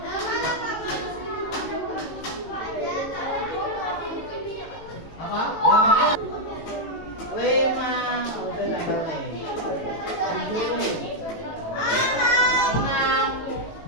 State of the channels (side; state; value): right; late; 18 ms